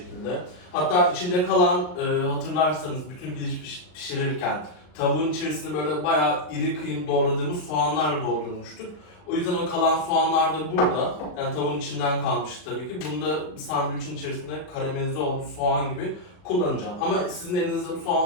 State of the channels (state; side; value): late; right; 39 ms